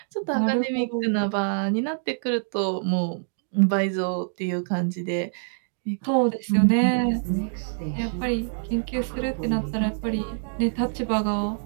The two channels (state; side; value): silent; left; digital silence